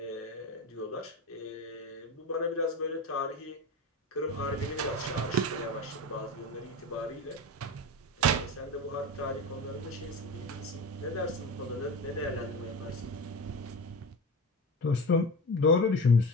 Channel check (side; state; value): both; normal; correlation 0.27